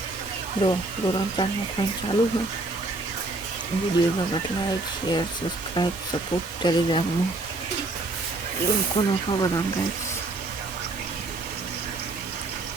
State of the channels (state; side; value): quieter; left; 3.0 dB